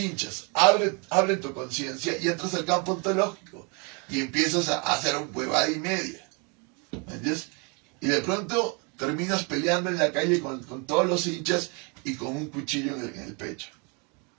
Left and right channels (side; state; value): left; quieter; 33.0 dB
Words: abren tu conciencia y entras al campo ontológico. Y empiezas a hacer un huevada y media. ¿Me entiendes? Y de pronto terminas peleando en la calle con todos los hinchas y con un cuchillo en el pecho.